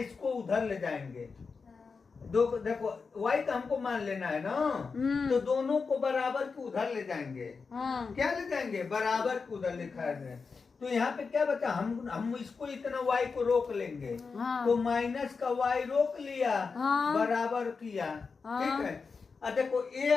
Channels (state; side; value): quieter; right; 4.9 dB